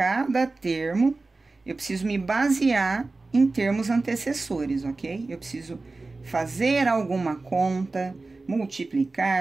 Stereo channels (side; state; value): left; quieter; 3.5 dB